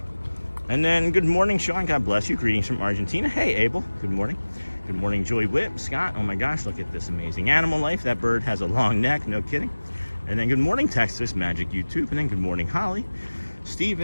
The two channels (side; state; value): both; inverted; correlation -1.00